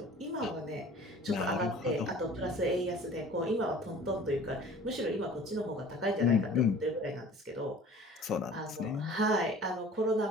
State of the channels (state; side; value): normal; both; correlation 0.45